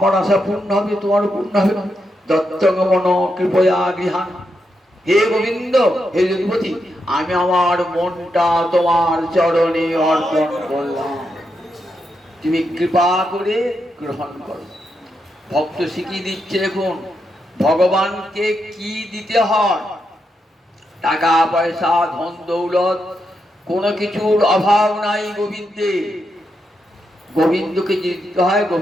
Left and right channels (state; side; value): normal; both; correlation 0.83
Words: আশা পূর্ণ হবে, তোমার পূর্ণ হবে। দত্তগমন কৃপয়া গৃহান। হে গোবিন্দ, হে যদুপতি, আমি আমার মনটা তোমার চরণে অর্পণ করলাম, তুমি কৃপা করে গ্রহণ করো। ভক্ত শিখিয়ে দিচ্ছে এখন ভগবানকে কি দিতে হয়। টাকা পয়সা ধন দৌলত কোনো কিছুর অভাব নাই গোবিন্দে। গোবিন্দকে দিতে হয়,